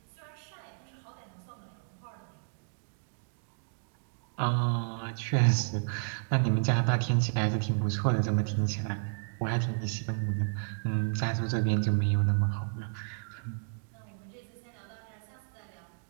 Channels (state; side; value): silent; left; digital silence